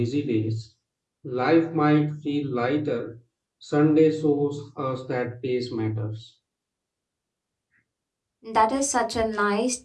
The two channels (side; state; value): both; identical; correlation 1.00